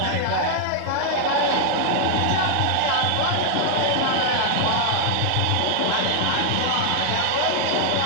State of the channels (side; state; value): both; different; correlation 0.00